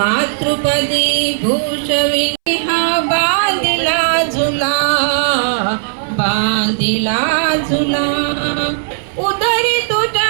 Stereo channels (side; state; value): left; silent; 67 dB below the other